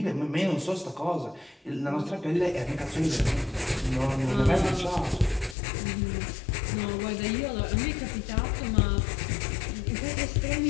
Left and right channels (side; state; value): right; drops out; at 5.6 s